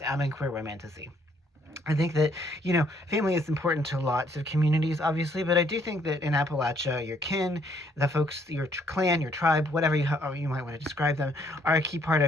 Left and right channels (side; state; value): both; normal; correlation 0.67